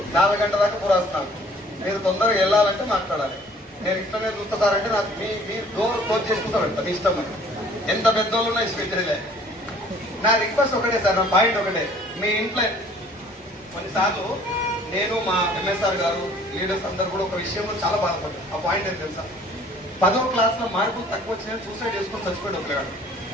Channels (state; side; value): normal; both; correlation 0.54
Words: 4 గంటల దాకా పురాస్తున్నాను. మీరు తొందరగా వెళ్ళాలంటే మాట్లాడాలి. నేను ఇష్టమే చూస్తా సార్ అంటే నాకు మీ డోర్ క్లోజ్ చేసుకుంటా పెడతా, మీ ఇష్టం. అని ఎంత పెద్దోళ్ళు ఉన్నా ఇష్టపెట్టలే. నా రిక్వెస్ట్ ఒకటే సార్, నా పాయింట్ ఒకటే. మీ ఇంట్లో కొన్నిసార్లు నేను మా MSR గారు లీడర్స్ అందరు కూడా ఒక విషయంలో చాలా బాధపడ్డారు. ఆ పాయింట్ ఏం తెలుసా? 10వ క్లాస్లో మార్కులు తక్కువ వచ్చినా సూసైడ్ చేసుకుని చచ్చిపోయాడు ఒక పిల్లగాడు.